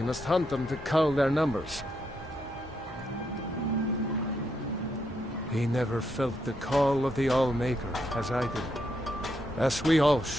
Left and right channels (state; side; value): normal; both; correlation 0.79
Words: must hunt them to cull their numbers. He never felt the call of the Allmaker, as I did. As we all